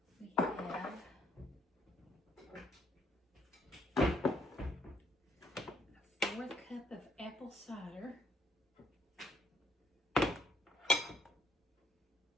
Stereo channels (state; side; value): normal; both; correlation 0.69